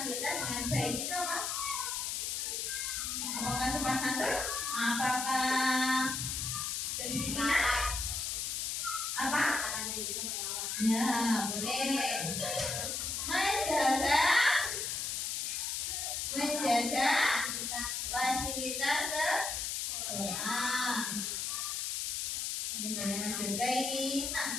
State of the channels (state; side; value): noise; left; hiss, 1 dB below the sound